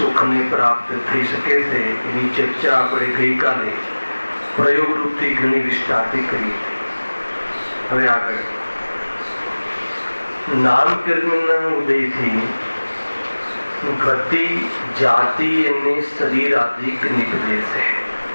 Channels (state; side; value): inverted; both; correlation -1.00